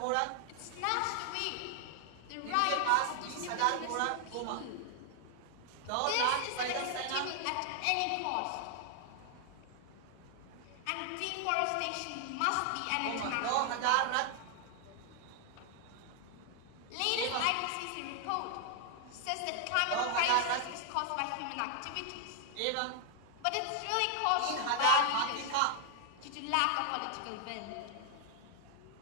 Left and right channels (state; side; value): different; both; correlation 0.00